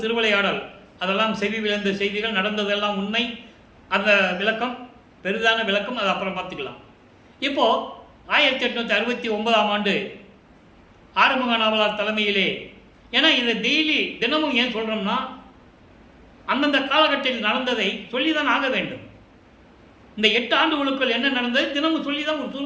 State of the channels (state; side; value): identical; both; correlation 1.00